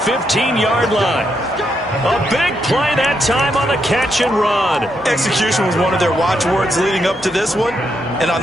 line. A big play that time on the catch and run. Execution was one of their watchwords leading up to this one. And on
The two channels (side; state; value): both; normal; correlation 0.80